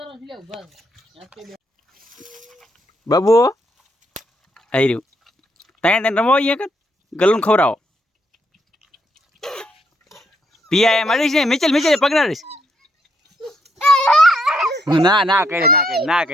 બાબુ આવી રહ્યું તને રમો અહીંયા કર ગલું ખવડાવો પિયા એમ અડીશ ને મિચેલ પકડાડીશ ના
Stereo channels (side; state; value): both; normal; correlation 0.75